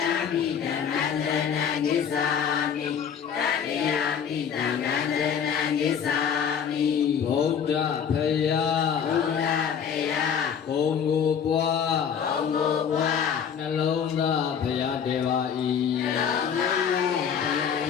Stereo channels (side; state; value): right; quieter; 7.6 dB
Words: ပိဓမ္မံတရဏဂိသာမိတတိယပိသံဃံတရဏဂိသာမိဗုဒ္ဓဖယားဘုံကိုပွားနှလုံးသားဖယားတေပါ၏